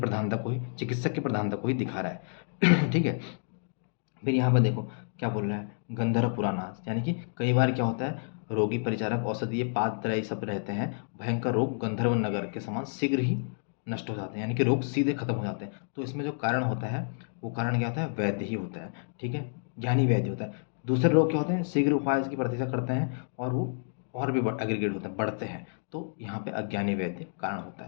को ही दिखा रहा है। ठीक है, फिर यहाँ पर देखो क्या बोल रहा है, गंधर्व पुराणास, यानी कि कई बार क्या होता है, रोगी, परिचारक, औषधि, ये पात्रय सब रहते हैं। भयंकर रोग गंधर्व नगर के समान शीघ्र ही नष्ट हो जाते हैं, यानी कि रोग सीधे खत्म हो जाते हैं। तो इसमें जो कारण होता है वो कारण क्या होता है, वैद्य ही होता है। ठीक है, ज्ञानी वैद्य होता है। दूसरे रोग क्या होते हैं, शीघ्र उपाय की प्रतीक्षा करते हैं और वो और भी एग्रीगेट होते हैं, बढ़ते हैं। तो यहाँ पे अज्ञानी वैद्य कारण होता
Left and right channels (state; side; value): silent; right; digital silence